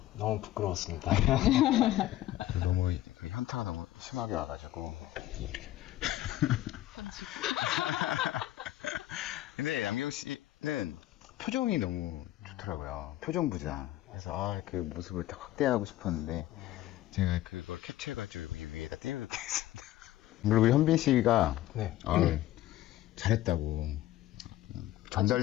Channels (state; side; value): quieter; right; 14.6 dB